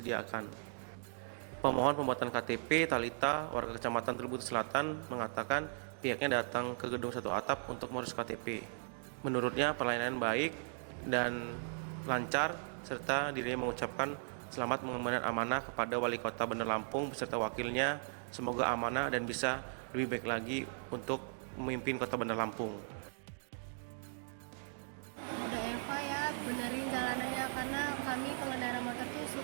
Pemohon pembuatan KTP, Talita, warga Kecamatan Tribut Selatan, mengatakan pihaknya datang ke Gedung Satu Atap untuk mengurus KTP. Menurutnya pelayanan baik dan lancar, serta dirinya mengucapkan selamat mengemban amanah kepada Wali Kota Bandar Lampung beserta wakilnya. Semoga amanah dan bisa lebih baik lagi untuk memimpin Kota Bandar Lampung. Ada Eva ya, benerin jalanannya karena kami pengendara motor tuh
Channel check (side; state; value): left; silent; digital silence